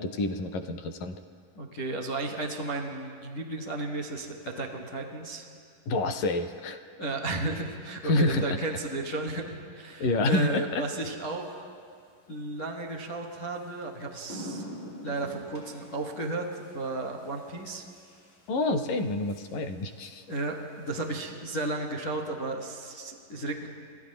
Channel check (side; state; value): right; late; 11 ms